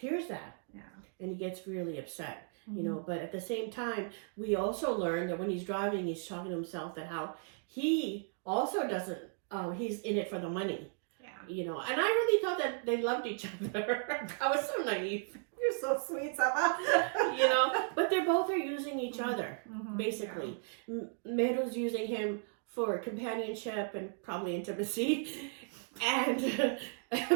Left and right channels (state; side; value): silent; left; 54 dB below the other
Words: that. Yeah. And he gets really upset, you know. But at the same time, we also learn that when he's driving, he's talking to himself that how he also doesn't, he's in it for the money. Yeah. You know, and I really thought that they loved each other. I was so naive. You're so sweet, Saba. You know, but they both are using each other, basically. Yeah. Meru's using him for companionship and probably intimacy. And